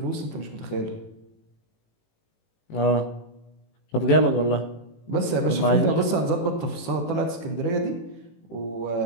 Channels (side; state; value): right; late; 18 ms